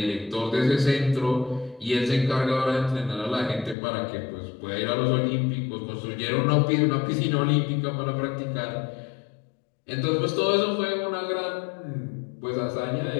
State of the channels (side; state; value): right; drops out; at 3.8 s